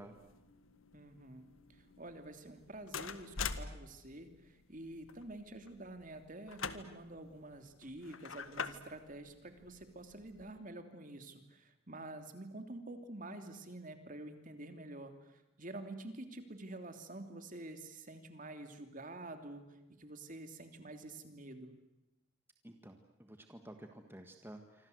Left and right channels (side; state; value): both; normal; correlation 0.32